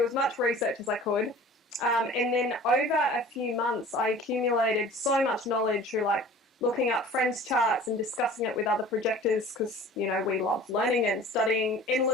as much research as I could. And then over a few months, I accumulated so much knowledge through looking up friends' charts and discussing it with other projectors, because, we love learning and studying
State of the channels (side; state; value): both; normal; correlation 0.44